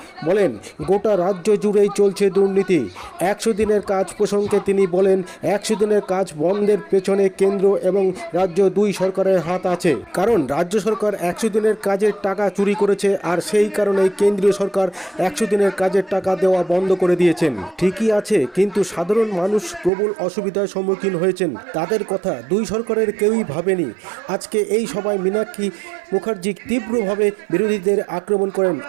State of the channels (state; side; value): drops out; left; at 19.9 s